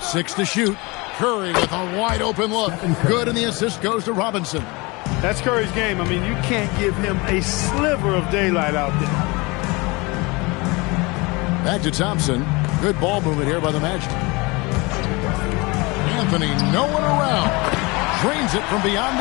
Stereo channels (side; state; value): right; quieter; 25.6 dB